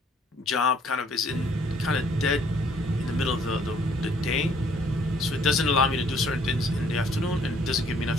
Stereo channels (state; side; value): normal; both; correlation 0.62